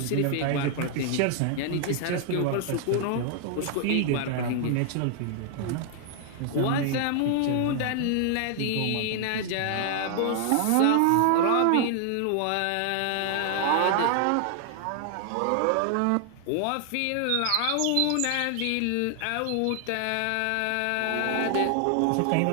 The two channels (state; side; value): different; both; correlation 0.00